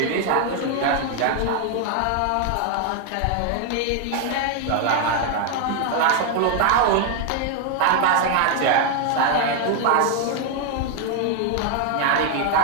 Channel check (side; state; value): both; different; correlation 0.00